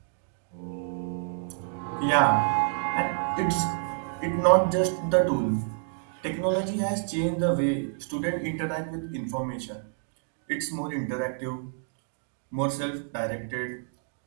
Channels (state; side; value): silent; left; digital silence